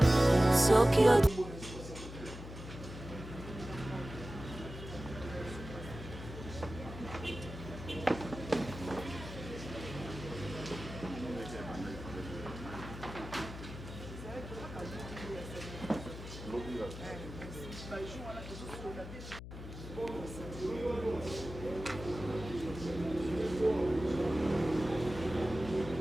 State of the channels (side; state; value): left; noise; hum, 11 dB below the sound